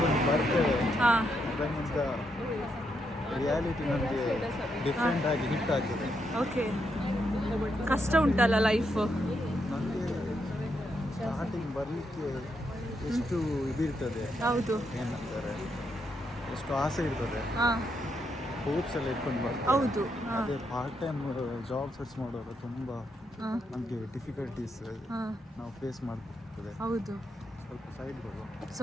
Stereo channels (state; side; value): normal; both; correlation 0.79